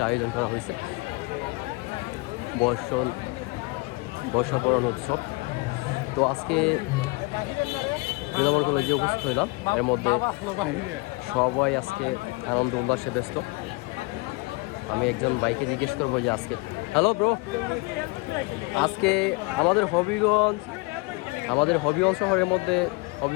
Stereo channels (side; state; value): right; quieter; 26.2 dB